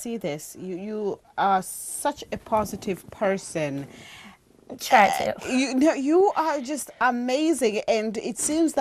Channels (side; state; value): both; identical; correlation 1.00